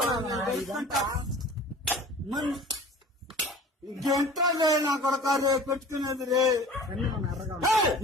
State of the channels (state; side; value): normal; both; correlation 0.43